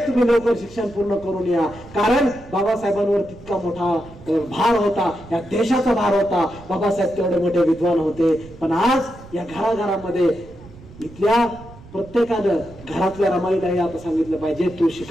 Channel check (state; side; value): noise; right; rumble, 19 dB below the sound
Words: तुम्ही लवकर शिक्षण पूर्ण करून या, कारण बाबासाहेबांवर तितका मोठा भार होता, या देशाचा भार होता. बाबासाहेब तेवढे मोठे विद्वान होते. पण आज या घराघरामध्ये इथल्या प्रत्येकानं घरातल्या रमाईलाही आता सांगितलं पाहिजे तू